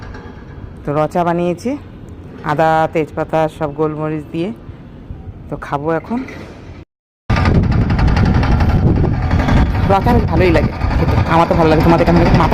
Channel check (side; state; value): both; identical; correlation 1.00